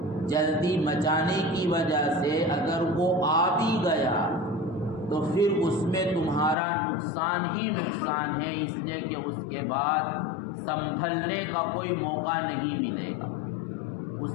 جلدی مچانے کی وجہ سے اگر وہ آ بھی گیا تو پھر اس میں تمہارا نقصان ہی نقصان ہے، اس لیے کہ اس کے بعد سنبھلنے کا کوئی موقع نہیں ملے گا۔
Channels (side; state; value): right; drops out; at 6.6 s